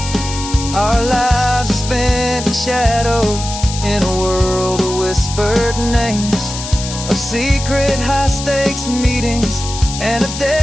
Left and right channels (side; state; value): left; noise; hiss, 8 dB below the sound